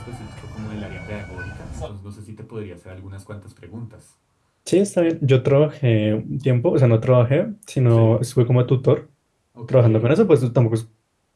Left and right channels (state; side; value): identical; both; correlation 1.00